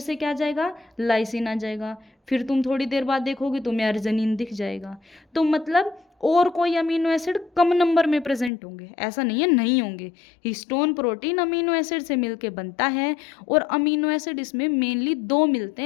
क्या आ जाएगा, लाइसिन आ जाएगा। फिर तुम थोड़ी देर बाद देखोगे तुम्हें अर्जिनिन दिख जाएगा। तो मतलब और कोई अमीनो एसिड कम नंबर में प्रेजेंट होंगे, ऐसा नहीं है नहीं होंगे। हिस्टोन प्रोटीन अमीनो एसिड से मिलके बनता है, और अमीनो एसिड इसमें मेनली 2 मिलते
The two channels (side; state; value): right; drops out; at 8.5 s